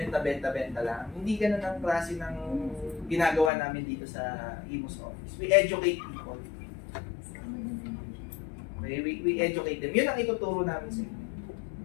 na benta-benta lang. Hindi ganun ang klase ng ginagawa namin dito sa IMOS office. We educate people. Okay, we educate them. Yun ang ituturo namin sa inyo.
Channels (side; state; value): right; drops out; at 3.5 s